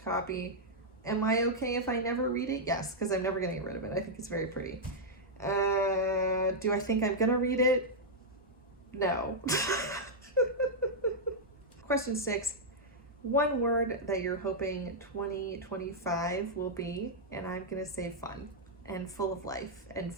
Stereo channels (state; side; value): normal; both; correlation -0.05